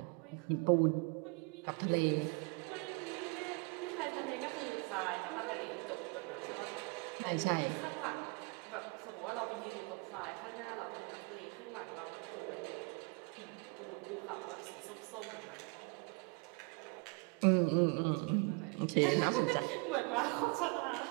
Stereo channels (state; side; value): quieter; left; 31.4 dB